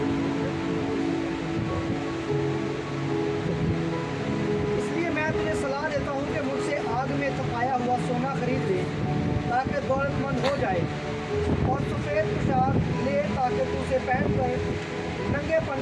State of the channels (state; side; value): identical; both; correlation 1.00